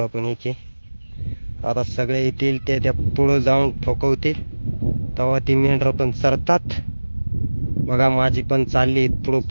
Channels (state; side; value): inverted; both; correlation -1.00